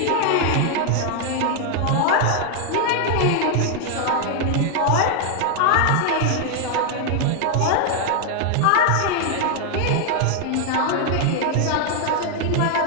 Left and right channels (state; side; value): different; both; correlation 0.00